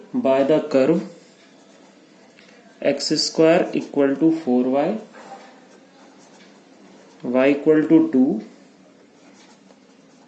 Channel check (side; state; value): both; identical; correlation 1.00